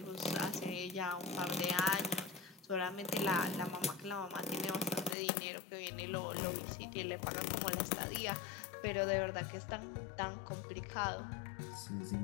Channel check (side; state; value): right; drops out; at 5.2 s